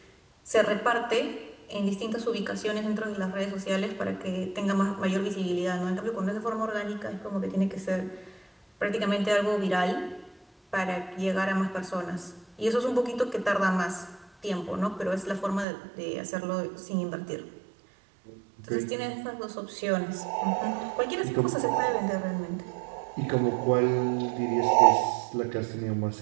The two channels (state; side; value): drops out; left; at 15.7 s